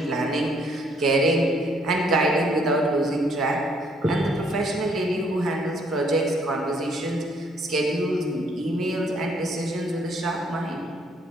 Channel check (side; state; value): both; normal; correlation 0.66